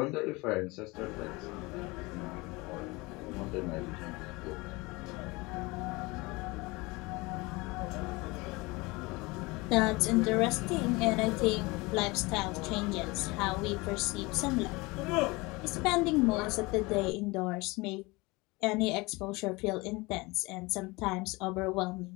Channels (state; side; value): quieter; right; 24.1 dB